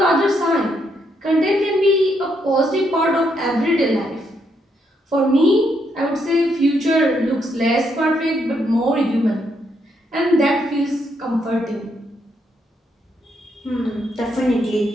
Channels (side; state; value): both; normal; correlation 0.76